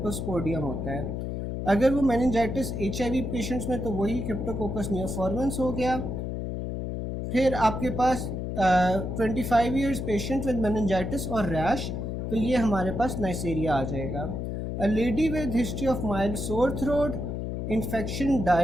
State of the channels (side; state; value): left; noise; hum, 4 dB below the sound